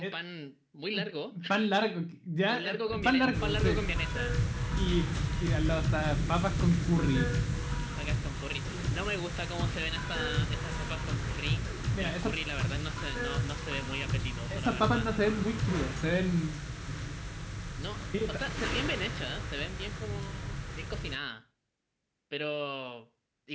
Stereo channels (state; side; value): identical; both; correlation 1.00